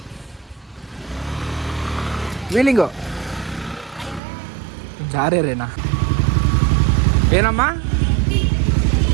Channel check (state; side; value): drops out; left; at 4.2 s